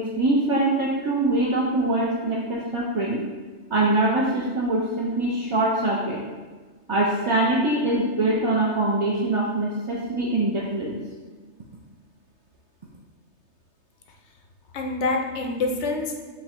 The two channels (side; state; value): right; late; 3.3 ms